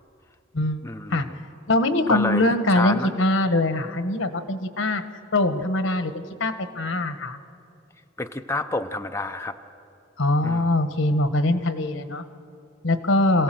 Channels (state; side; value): normal; both; correlation 0.36